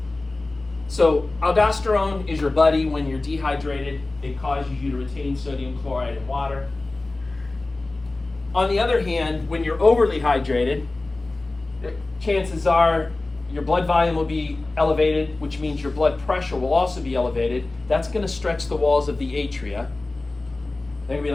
So aldosterone is your buddy when you're dehydrated. It causes you to retain sodium chloride and water. On the other hand, when you're overly hydrated, chances are your blood volume will be elevated, which means your blood pressure will also be elevated. That's going to stretch the walls of the atria. They're going to be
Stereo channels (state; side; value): quieter; right; 3.1 dB